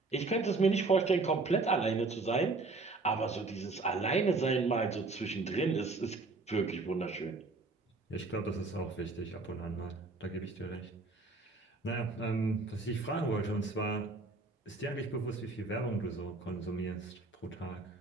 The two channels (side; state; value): left; quieter; 3.5 dB